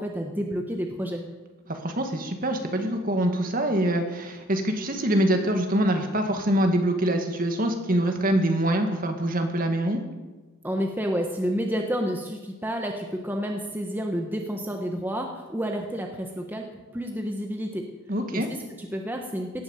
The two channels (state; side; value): normal; both; correlation 0.66